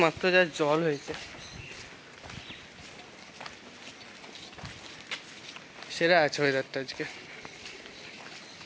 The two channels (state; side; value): identical; both; correlation 1.00